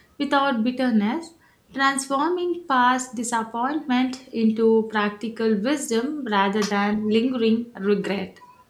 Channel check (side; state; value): both; identical; correlation 1.00